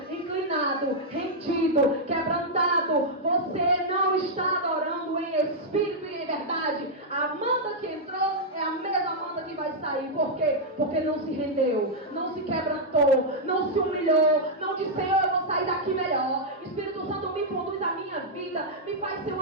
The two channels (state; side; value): normal; both; correlation -0.05